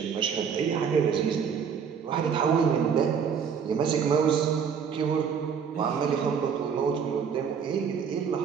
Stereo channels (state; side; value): quieter; left; 6.9 dB